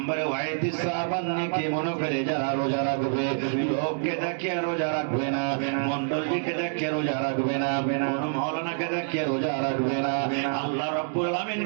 ওয়াইতিসাবান নেকি মনে করে যারা রোজা রাখবে, লোককে দেখিয়ে রোজা রাখবে না, মন্ডলকে দেখিয়ে রোজা রাখবে না, কোন মাওলানাকে দেখিয়ে রোজা রাখবে না, আল্লাহ রাব্বুল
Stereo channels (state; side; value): silent; left; digital silence